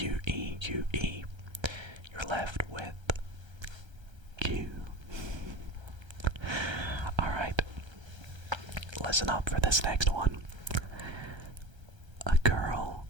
you're left with Q. Alright, listen up for this next one. A girl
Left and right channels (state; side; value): late; left; 1.3 ms